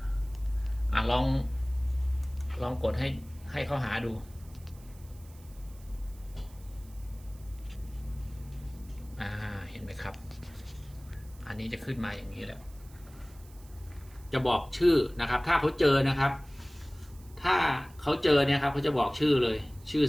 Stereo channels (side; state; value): right; noise; hiss, 25 dB below the sound